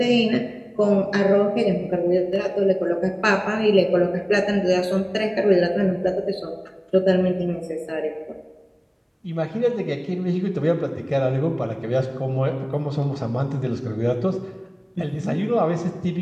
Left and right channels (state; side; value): identical; both; correlation 1.00